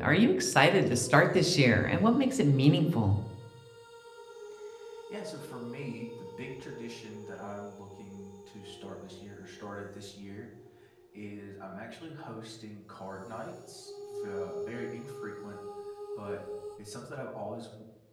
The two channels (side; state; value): both; identical; correlation 1.00